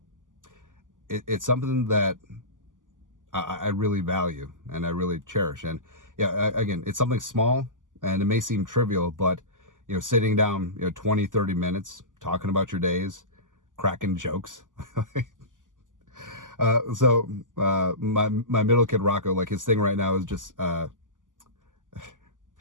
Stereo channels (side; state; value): left; late; 0.88 ms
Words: it's something that I really value and I really cherish. And yeah, again, it's something small, and it may seem trivial, but sitting down 20, 30 minutes talking about your days, cracking jokes, My middle kid Rocco, like his thing right now is just